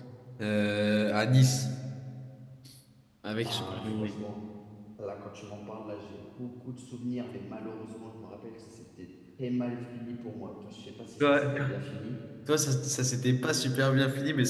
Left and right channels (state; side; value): identical; both; correlation 1.00